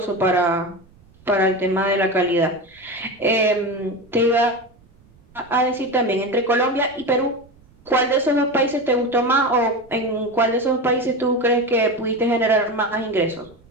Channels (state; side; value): noise; right; rumble, 29 dB below the sound